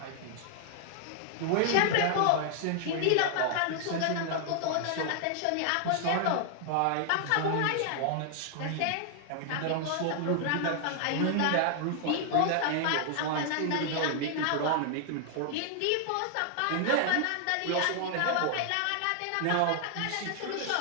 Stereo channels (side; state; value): both; different; correlation 0.00